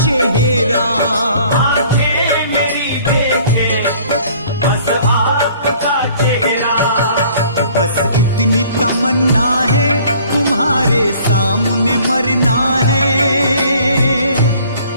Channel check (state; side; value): inverted; both; correlation -0.55